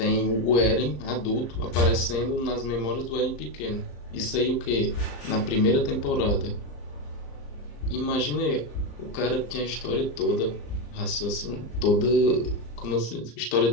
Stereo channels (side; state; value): right; late; 34 ms